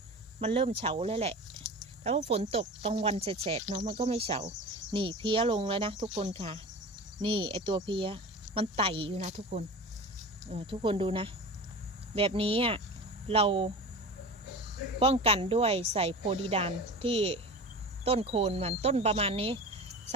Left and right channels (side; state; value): both; normal; correlation 0.33